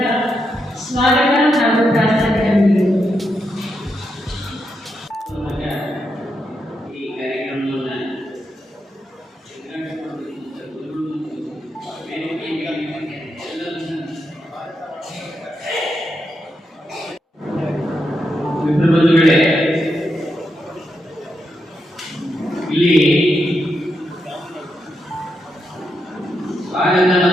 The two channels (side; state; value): both; normal; correlation 0.84